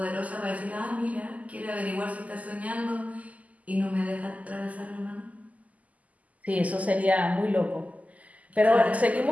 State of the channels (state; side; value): late; left; 0.074 ms